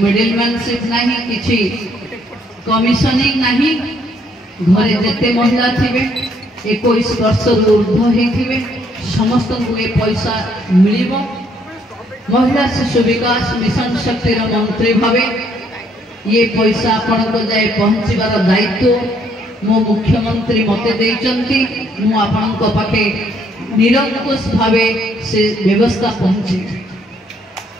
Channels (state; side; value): normal; both; correlation 0.68